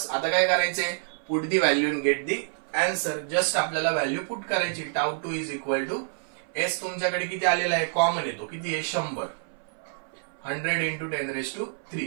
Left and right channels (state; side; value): silent; left; 59 dB below the other